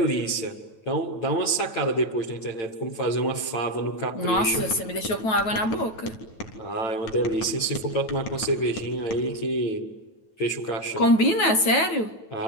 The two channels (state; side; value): late; right; 9.2 ms